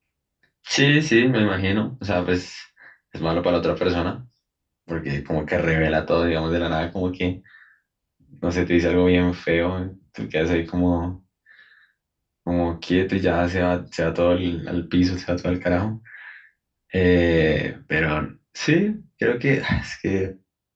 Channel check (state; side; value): identical; both; correlation 1.00